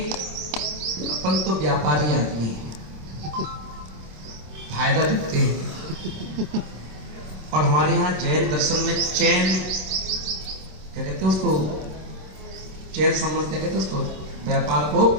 अपन तो व्यापारी आदमी हैं, फायदा देखते हैं। और हमारे यहाँ जैन दर्शन में चैन क्या कहते हैं उसको, चैन संबंध क्या कहते हैं उसको, व्यापार को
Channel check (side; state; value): left; late; 26 ms